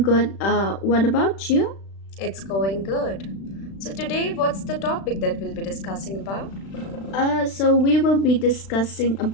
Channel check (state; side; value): late; right; 36 ms